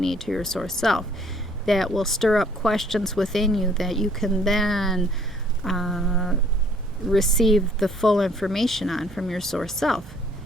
to your source self. That will stir up questions within you that you can then receive the full information on from your source self.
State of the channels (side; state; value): both; normal; correlation 0.60